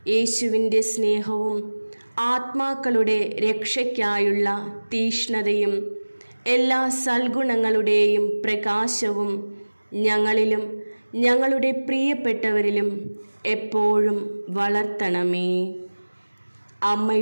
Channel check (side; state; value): both; inverted; correlation -1.00